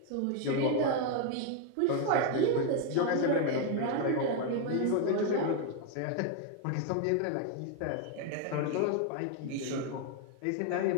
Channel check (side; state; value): both; different; correlation 0.00